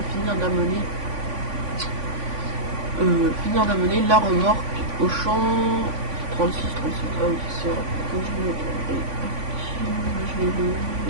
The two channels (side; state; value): left; late; 3.5 ms